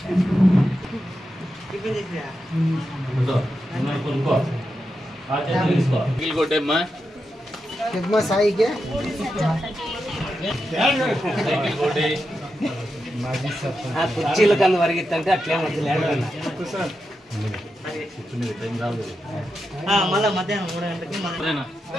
సాయికి కుర్చీల కన్నా వరిగిద్దంటే అట్లే మళ్ళీ మధ్యాహ్నం 3 గంటలకి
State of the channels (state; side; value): normal; both; correlation 0.87